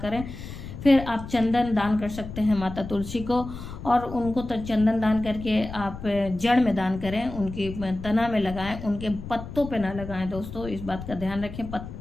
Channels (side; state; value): left; noise; rumble, 11 dB below the sound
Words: फिर आप चंदन दान कर सकते हैं माता तुलसी को, और उनको तो चंदन दान करके आप जड़ में दान करें, उनकी तना में लगाएं, उनके पत्तों पे ना लगाएं दोस्तों। इस बात का ध्यान रखें,